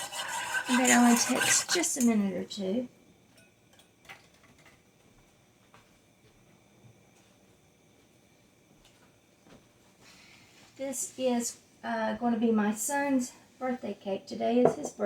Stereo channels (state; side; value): identical; both; correlation 1.00